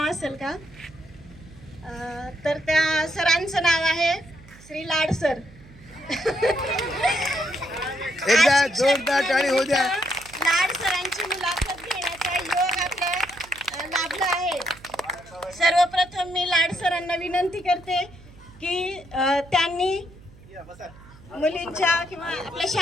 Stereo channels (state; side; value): noise; right; hum, 22 dB below the sound